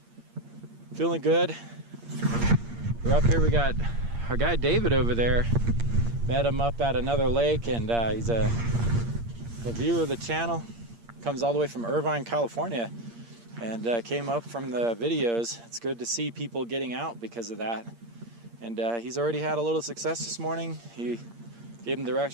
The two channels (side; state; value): left; late; 8.6 ms